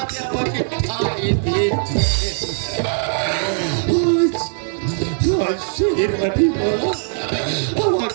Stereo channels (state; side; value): silent; left; digital silence